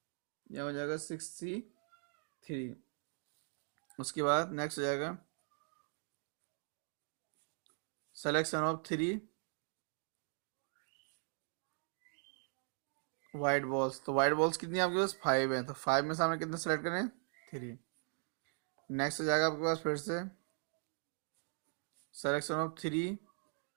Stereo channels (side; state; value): left; silent; 51 dB below the other